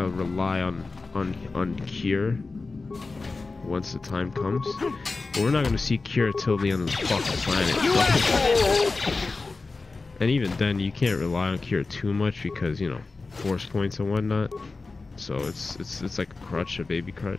of rely on cure once the time comes. But we're not gonna see cure till the end of the fucking planet. And even then, you can't rely on cure too much because, you know, force points and whatnot. So it's like a crutch, a baby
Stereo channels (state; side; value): quieter; right; 3.8 dB